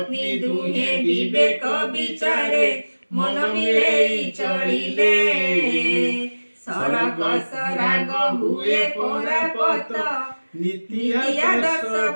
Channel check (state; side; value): inverted; both; correlation -1.00